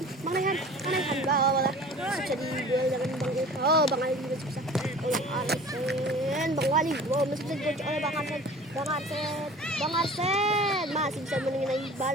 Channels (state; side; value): normal; both; correlation 0.43